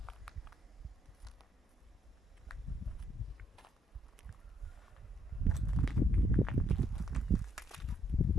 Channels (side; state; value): both; normal; correlation 0.72